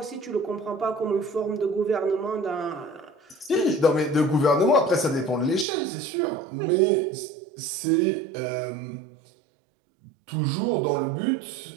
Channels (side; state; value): left; drops out; at 5.7 s